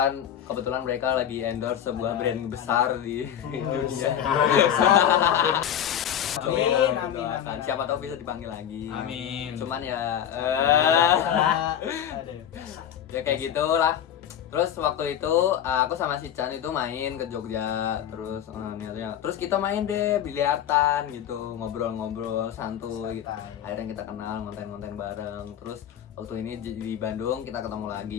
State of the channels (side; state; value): right; quieter; 9.8 dB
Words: kebetulan mereka lagi endorse sebuah brand besar di dunia. Amin, amin, amin. Siapa tahu bisa dipanggil lagi. Amin. Cuman ya Aduh. ya kayak gitulah. Terus waktu itu aku sama si Chan itu main ke Jogja. Terus niatnya terus kita main deh biliartan gitu, ngobrol-ngobrol santuy gitu. Akhirnya kita kenal, ngonten-ngonten bareng. Terus waktu ini di Bandung kita ketemu